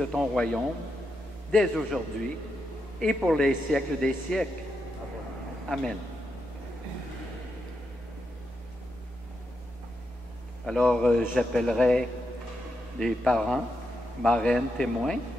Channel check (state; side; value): normal; both; correlation 0.84